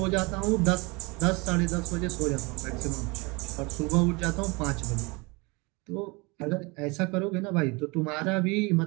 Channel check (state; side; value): quieter; left; 27.0 dB